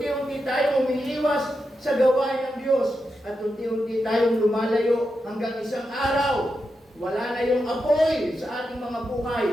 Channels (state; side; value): normal; both; correlation 0.87